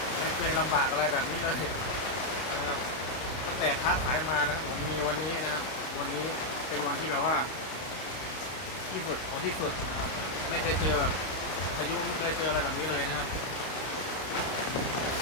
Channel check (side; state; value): right; late; 32 ms